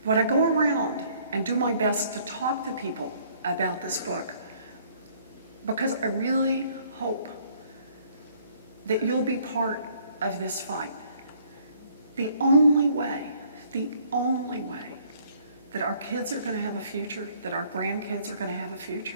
But I go around and do my best to talk to people about this book because I really hope that you'll be part of this fight. The only way that our kids are going to have a future, that our grandkids are going to have a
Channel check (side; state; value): both; inverted; correlation -0.61